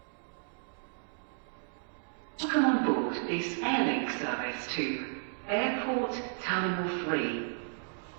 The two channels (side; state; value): left; silent; digital silence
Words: Welcome on board this airlink service to Airport Terminal 3.